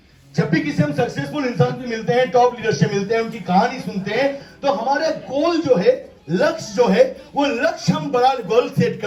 जब भी किसी हम सक्सेसफुल इंसान से मिलते हैं, टॉप लीडर से मिलते हैं, उनकी कहानी सुनते हैं, तो हमारा गोल जो है, लक्ष्य जो है, वो लक्ष्य हम बड़ा गोल सेट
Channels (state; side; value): identical; both; correlation 1.00